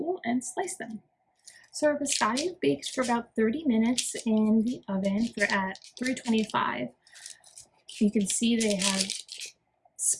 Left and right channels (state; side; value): identical; both; correlation 1.00